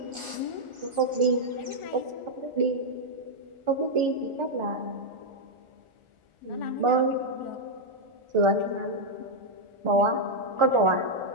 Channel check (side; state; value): left; late; 1.4 ms